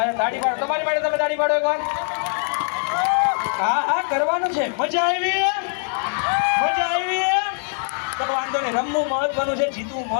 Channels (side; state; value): right; silent; 64 dB below the other